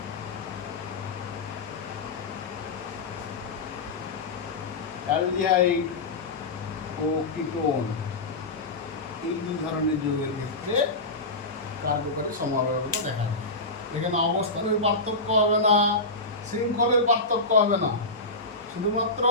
অ্যালডিহাইড ও কিটোন, এই 2 ধরনের যৌগের ক্ষেত্রে কার্যকরী সমাবয়বতা দেখা যায়। এখানে অবস্থানের পার্থক্য হবে না, শৃঙ্খলের পার্থক্য হবে না, শুধুমাত্র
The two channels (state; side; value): quieter; right; 3.1 dB